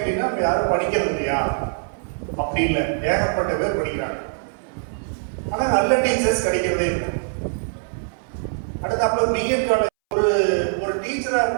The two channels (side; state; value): left; silent; 63 dB below the other